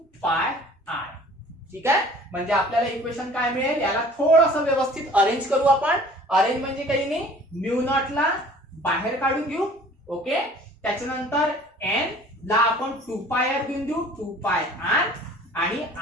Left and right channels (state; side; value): normal; both; correlation 0.50